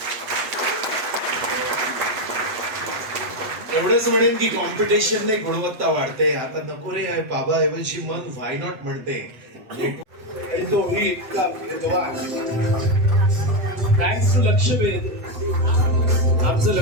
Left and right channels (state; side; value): late; left; 8.1 ms